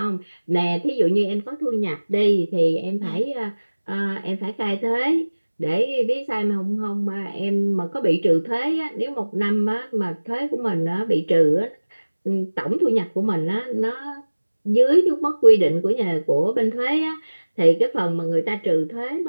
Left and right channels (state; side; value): inverted; both; correlation -1.00